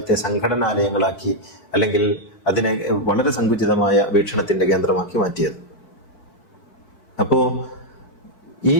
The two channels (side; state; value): right; late; 4.6 ms